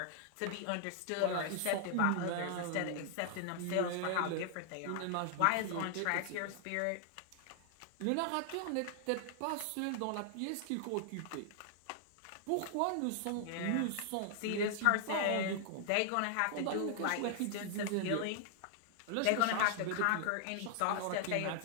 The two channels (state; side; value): different; both; correlation 0.00